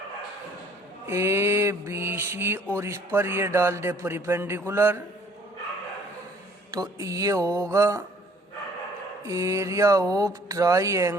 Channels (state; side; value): normal; both; correlation 0.57